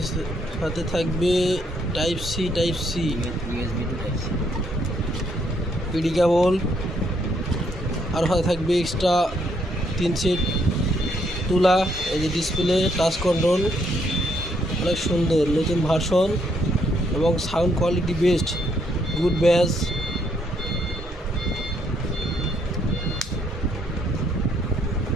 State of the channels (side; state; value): both; normal; correlation 0.72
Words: সাথে থাকবে type C USB to type C, PD cable, আর সাথে থাকবে এক্সট্রা 3 সেট তুলা। এই যে ডিসপ্লে টাচ কন্ট্রোল, অনেক সুন্দর নতুন ভার্সন এবং সাউন্ড কোয়ালিটি বেস্ট, গুড ব্যাস।